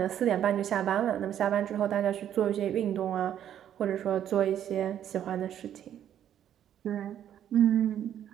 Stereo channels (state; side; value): quieter; left; 10.3 dB